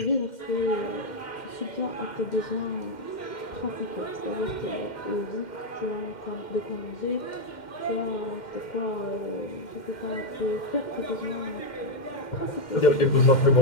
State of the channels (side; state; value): right; late; 2.1 ms